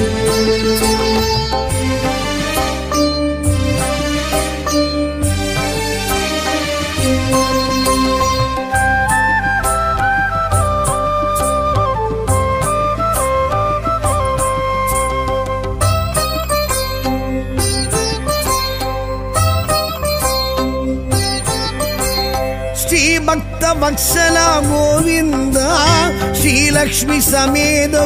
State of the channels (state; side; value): identical; both; correlation 1.00